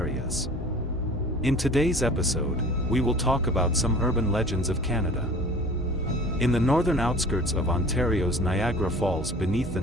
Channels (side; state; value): both; normal; correlation 0.44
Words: In today's episode, we will talk about some urban legends of Canada. In the northern outskirts of Ontario's Niagara Falls beneath the